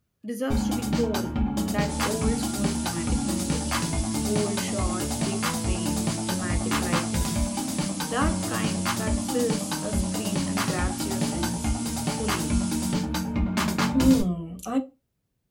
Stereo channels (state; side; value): identical; both; correlation 1.00